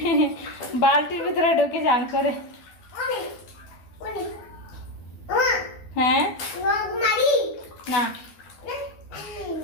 বালতির ভিতরে ঢুকে চান করে। হ্যাঁ না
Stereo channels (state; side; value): late; right; 12 ms